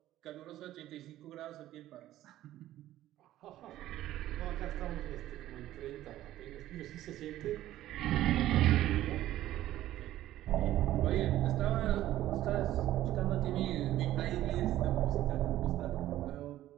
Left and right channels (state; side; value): quieter; left; 14.0 dB